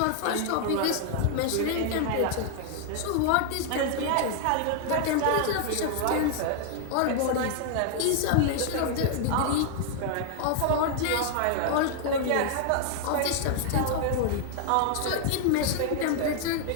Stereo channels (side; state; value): both; different; correlation 0.00